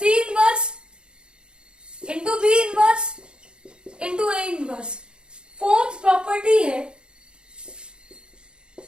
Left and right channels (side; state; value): left; late; 0.051 ms